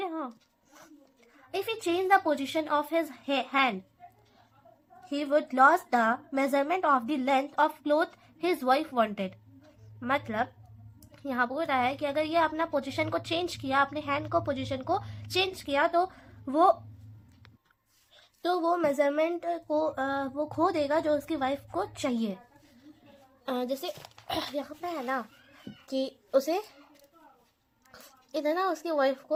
हाँ, if he change the position of his hand he would loss the measurement of the length of cloth his wife wanted. मतलब यहाँ बोल रहा है कि अगर ये अपना पोजीशन को चेंज किया, अपने हैंड को पोजीशन को चेंज किया, तो वो मेजरमेंट को वो खो देगा जो उसकी वाइफ को चाहिए. जैसे यहाँ पे है ना कि उसे इतना उसकी वाइफ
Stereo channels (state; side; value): identical; both; correlation 1.00